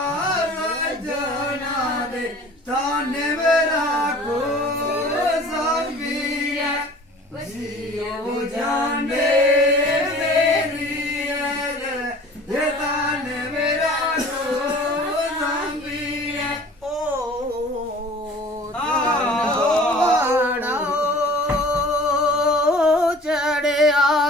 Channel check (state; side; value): normal; both; correlation 0.46